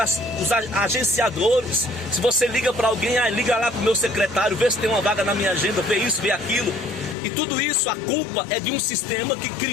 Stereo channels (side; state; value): right; drops out; at 7.2 s